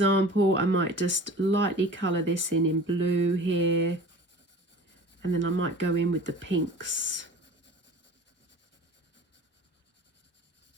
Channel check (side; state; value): both; normal; correlation 0.41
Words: I might just lightly colour this in blue here, and then I might go in with the pinks.